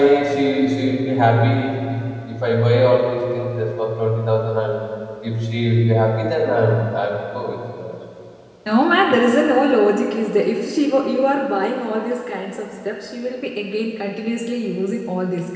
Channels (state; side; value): identical; both; correlation 1.00